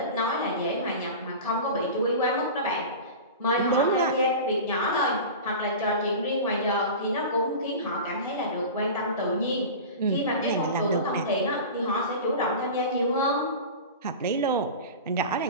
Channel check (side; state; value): both; inverted; correlation -0.31